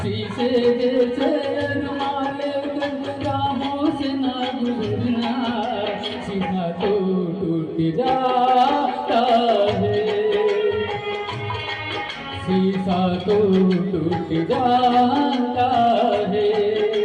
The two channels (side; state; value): both; identical; correlation 1.00